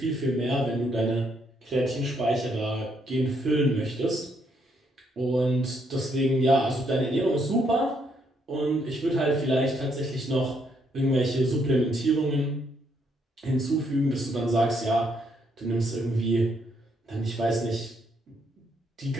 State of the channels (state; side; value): normal; both; correlation 0.73